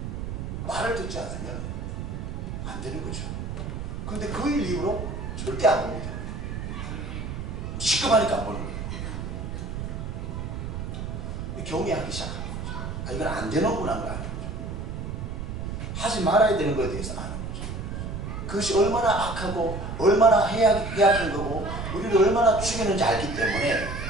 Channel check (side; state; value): right; noise; rumble, 5 dB below the sound